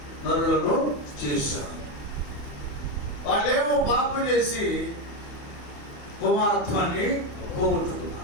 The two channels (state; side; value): late; right; 28 ms